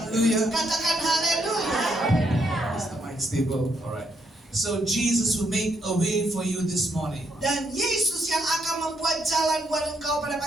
Katakan haleluya. Is the mind stable? All right. So Jesus will make a way for you this morning. Dan Yesus yang akan membuat jalan buat engkau pada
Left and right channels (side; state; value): both; normal; correlation 0.75